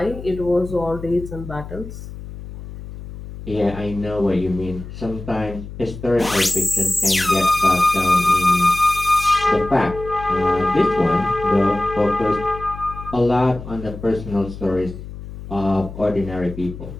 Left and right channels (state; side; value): noise; left; hum, 12 dB below the sound